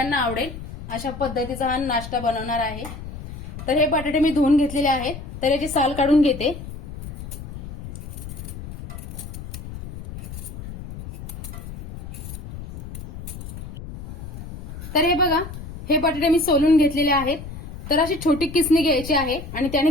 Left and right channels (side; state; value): left; noise; rumble, 11 dB below the sound